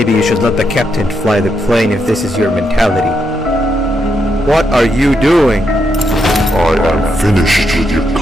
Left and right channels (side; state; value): both; normal; correlation 0.81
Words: you should let the captain fly the plane if this is your mentality. What are you doing? I am finished with your